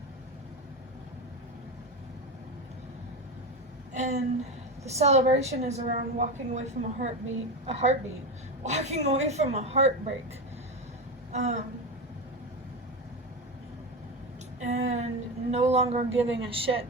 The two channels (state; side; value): normal; both; correlation 0.18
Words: And the celebration is around walking away from a heartbeat, walking away from a heartbreak. And no longer giving a shit